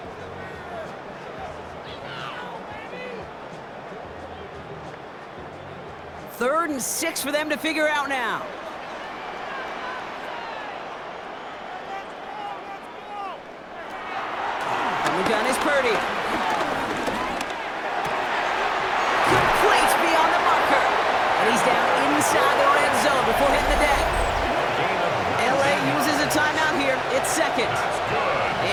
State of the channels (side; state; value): both; identical; correlation 1.00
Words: Third and 6 for them to figure out now. And the gun is Purdy. Complete beyond the marker. And he's down inside the red zone before hitting the deck. LA uses a timeout here. It's 2nd.